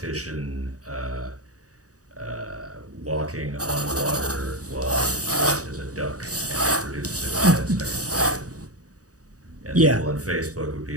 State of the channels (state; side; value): late; left; 0.66 ms